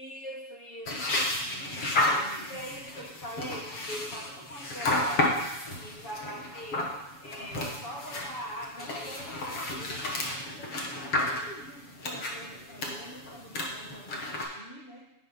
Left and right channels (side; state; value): right; late; 7.0 ms